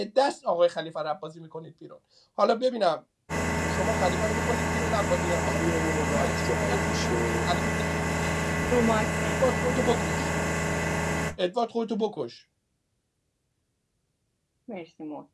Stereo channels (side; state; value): both; identical; correlation 1.00